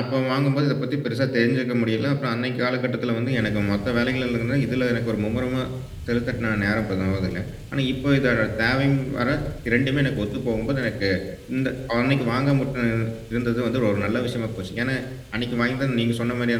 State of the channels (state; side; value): identical; both; correlation 1.00